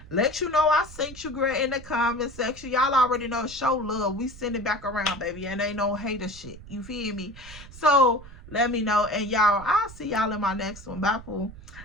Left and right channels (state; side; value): noise; right; rumble, 17 dB below the sound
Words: Let you know I sent you, girl, in the comment section. Y'all already know, show love. We send it back around, baby, and ain't no hater shit. You feel me? So let me know. And y'all, I'll see y'all in my next one. Bye, Pooh.